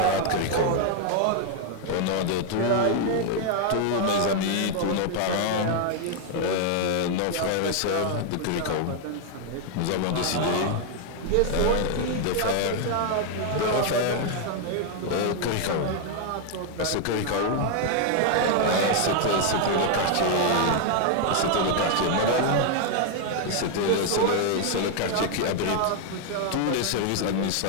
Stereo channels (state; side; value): different; both; correlation 0.00